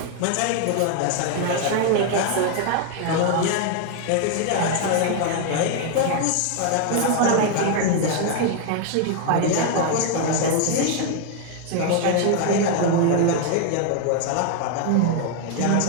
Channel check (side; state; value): both; different; correlation 0.00